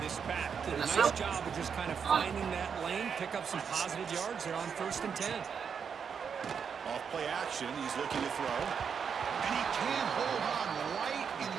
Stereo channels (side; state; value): left; quieter; 6.7 dB